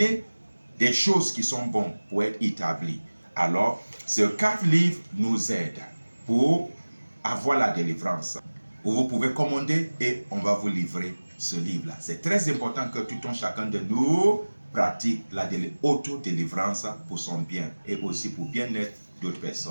des choses qui sont bonnes pour être établies. Alors, ces 4 livres nous aident pour avoir la délivrance. Vous pouvez commander et on va vous livrer ce livre-là. C'est très important que tout un chacun de nous pratique la auto-délivrance pour son bien et aussi pour bien-être d'autres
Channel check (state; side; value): inverted; both; correlation -1.00